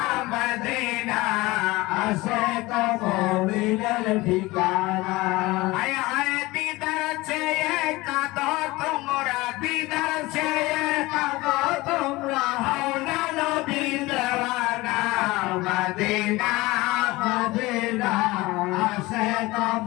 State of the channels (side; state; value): right; quieter; 20.7 dB